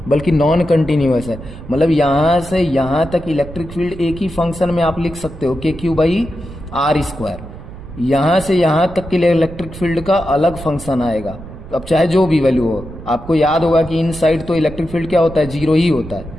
बल्कि नॉन कंटिन्यूअस है। मतलब यहां से यहां तक इलेक्ट्रिक फील्ड एक ही फंक्शन में आप लिख सकते हो, KQ/R²। यहां से यहां तक के लिए इलेक्ट्रिक फील्ड का अलग फंक्शन आएगा। अब चाहे जो भी वैल्यू हो, आपको याद होगा कि इनसाइड तो इलेक्ट्रिक फील्ड क्या होता है, 0 ही होता है।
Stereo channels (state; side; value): noise; right; rumble, 14 dB below the sound